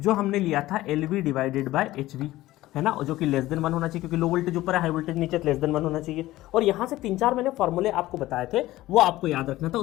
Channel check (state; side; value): quieter; right; 16.5 dB